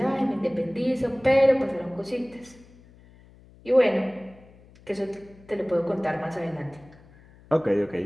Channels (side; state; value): left; noise; hum, 25 dB below the sound